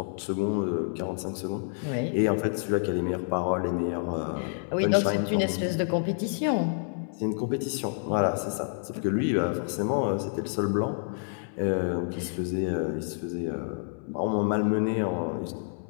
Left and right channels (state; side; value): silent; right; 59 dB below the other